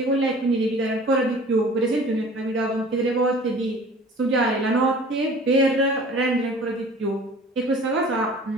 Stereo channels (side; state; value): both; normal; correlation 0.46